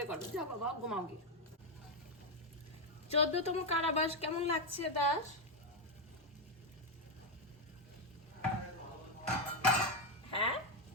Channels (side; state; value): both; normal; correlation 0.04